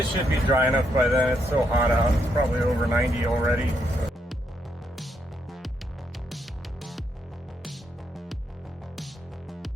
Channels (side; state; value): both; normal; correlation 0.78